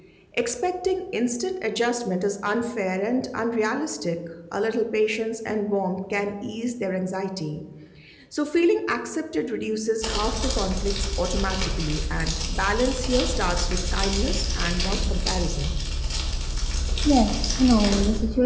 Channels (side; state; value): both; identical; correlation 1.00